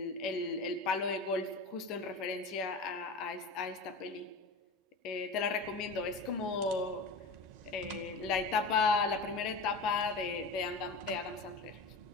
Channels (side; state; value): right; quieter; 3.5 dB